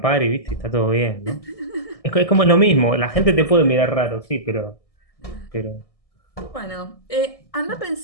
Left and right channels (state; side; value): late; right; 1.6 ms